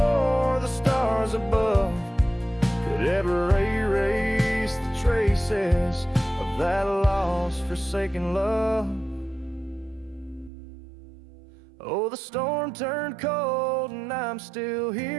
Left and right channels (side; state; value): left; drops out; at 10.5 s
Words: the stars above could ever erase the traces of that lost, forsaken love. Oh, the storm turned cold and I'm still